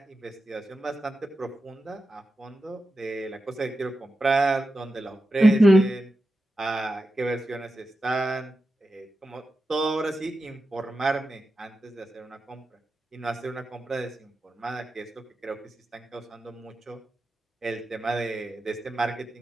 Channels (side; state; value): both; normal; correlation 0.91